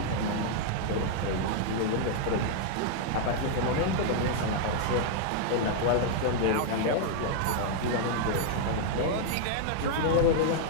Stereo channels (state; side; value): different; both; correlation 0.00